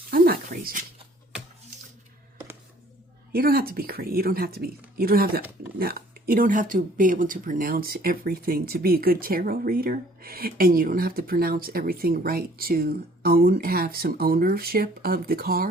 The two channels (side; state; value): both; normal; correlation 0.56